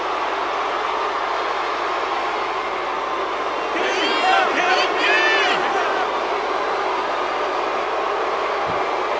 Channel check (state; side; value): noise; left; hum, 28 dB below the sound